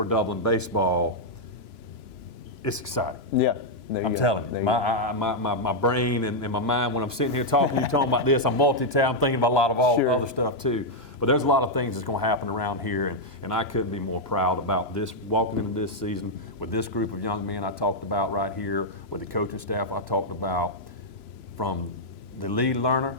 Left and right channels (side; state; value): right; late; 3.0 ms